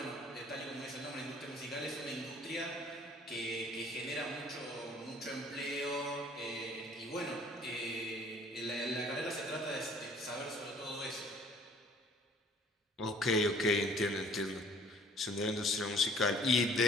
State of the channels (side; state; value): both; normal; correlation 0.55